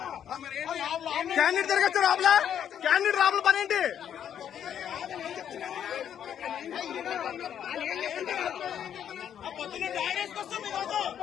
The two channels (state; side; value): quieter; right; 9.3 dB